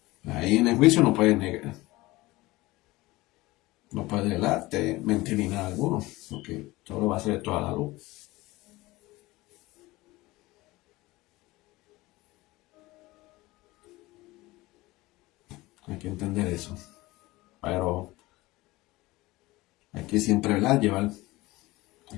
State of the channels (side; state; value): right; quieter; 20.0 dB